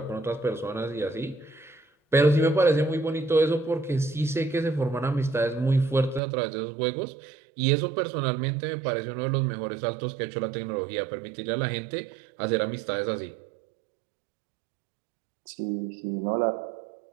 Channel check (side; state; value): left; drops out; at 6.2 s